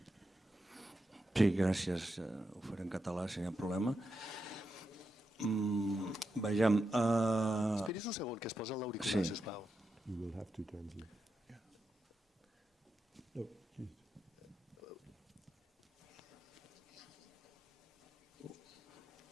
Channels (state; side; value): normal; both; correlation 0.87